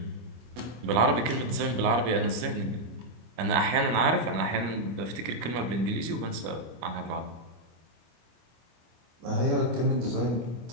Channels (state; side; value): late; left; 25 ms